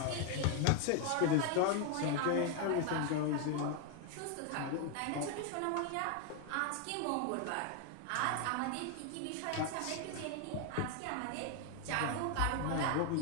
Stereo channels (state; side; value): different; both; correlation 0.01